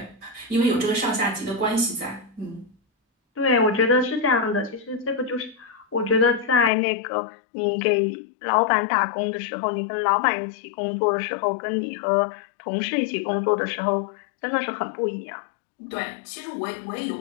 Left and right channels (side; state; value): right; drops out; at 6.7 s